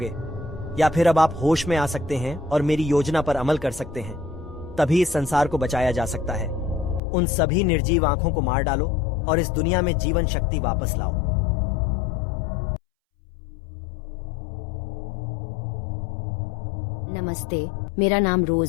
या फिर अब आप होश में आ सकते हैं और मेरी योजना पर अमल कर सकते हैं। तभी इस संसार को बचाया जा सकता है। उन सभी निर्जीव आंखों को मार डालो और इस दुनिया में जीवन शक्ति वापस लाओ। नमस्ते, मेरा नाम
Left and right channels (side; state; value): right; drops out; at 7.0 s